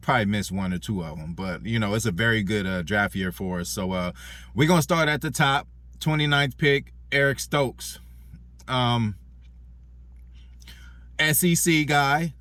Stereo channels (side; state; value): both; identical; correlation 1.00